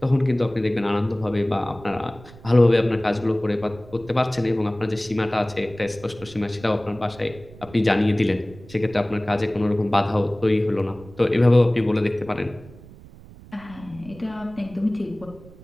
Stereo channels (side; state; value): right; noise; rumble, 20 dB below the sound